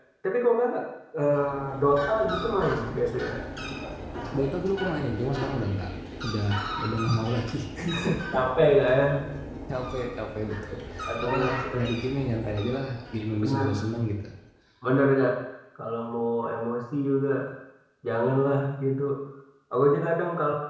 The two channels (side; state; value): both; identical; correlation 1.00